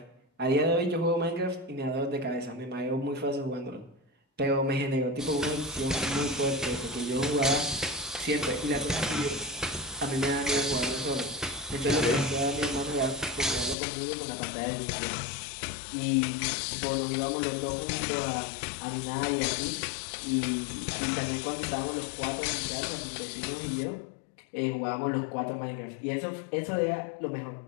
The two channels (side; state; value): right; drops out; at 13.8 s